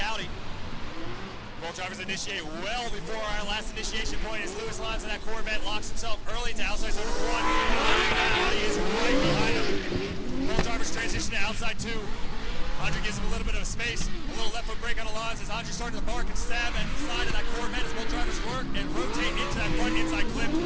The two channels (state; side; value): identical; both; correlation 1.00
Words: Audi. Both drivers initiate well before our last initiation point as Lewis Lons in that Corvette locks himself early to outside zone number 1. Andre in that Audi is right behind him. Both drivers transition to outside 2. Andre gives him a little bit of space, a little left foot brake on the Lons as Andre starting to bark and stab at the side of that Corvette as both drivers work and rotate into that front inside clip,